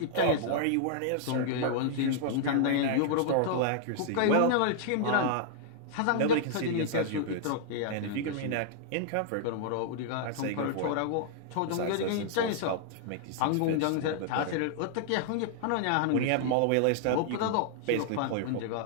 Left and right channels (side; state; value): both; different; correlation -0.01